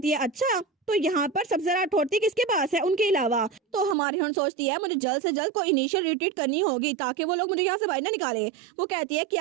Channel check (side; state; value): left; drops out; at 4.0 s